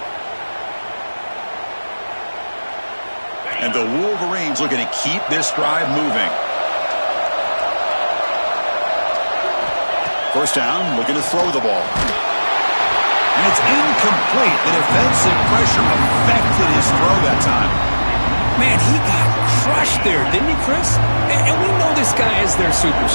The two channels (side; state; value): both; inverted; correlation -1.00